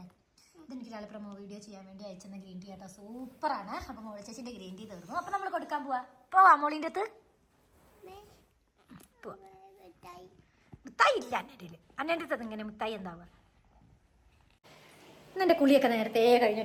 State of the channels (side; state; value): both; identical; correlation 1.00